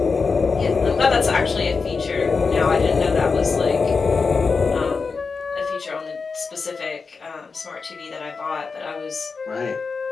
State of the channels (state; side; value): quieter; right; 4.8 dB